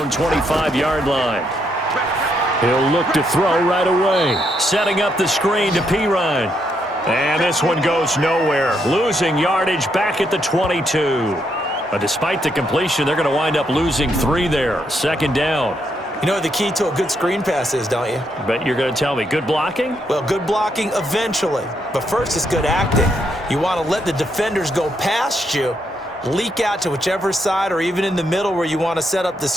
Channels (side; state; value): both; normal; correlation 0.77